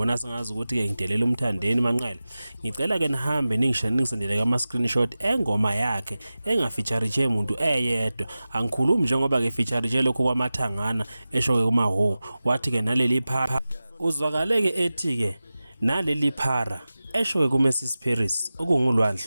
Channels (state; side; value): inverted; both; correlation -0.96